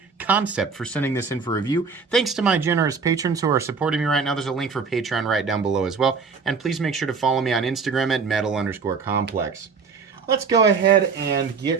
Kansept for sending this in for review. Thanks to my generous patrons who are supporting me right now. There's a link for Patreon right down below as well. And please make sure to follow me on Instagram at metal_complex. Let's go ahead and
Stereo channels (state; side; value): quieter; left; 5.2 dB